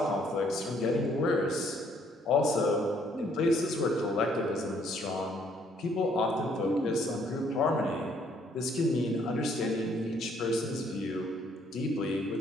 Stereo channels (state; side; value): normal; both; correlation 0.66